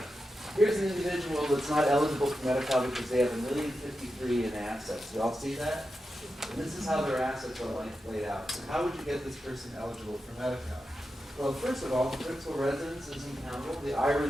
Here's an individual that's not eligible for Medi-Cal because they have $1,053,000 in assets. Do y'all see that? And this is how their assets are laid out. So how would you get this person eligible for Medi-Cal? Well, first of all, the principal residence isn't countable. The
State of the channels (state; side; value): normal; both; correlation 0.90